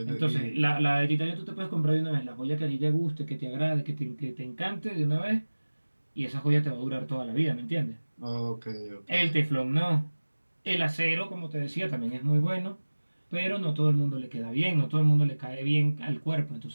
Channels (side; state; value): both; inverted; correlation -1.00